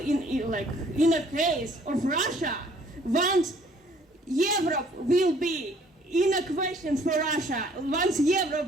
a case of Russia, once Europe will be in a question for Russia, once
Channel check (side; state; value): both; normal; correlation 0.59